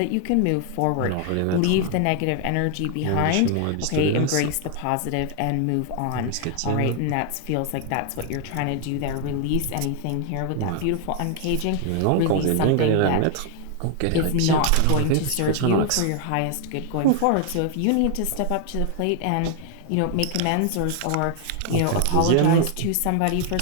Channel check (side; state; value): both; different; correlation 0.00